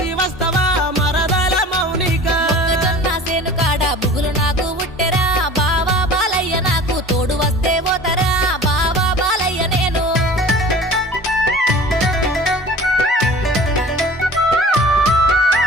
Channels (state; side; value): normal; both; correlation 0.43